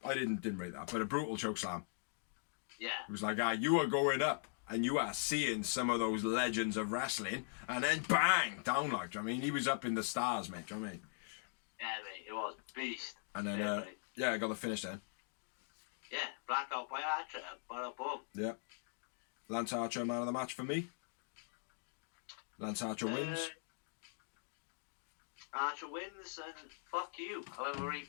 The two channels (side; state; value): right; silent; digital silence